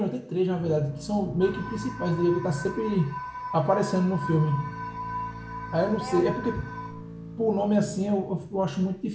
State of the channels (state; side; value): identical; both; correlation 1.00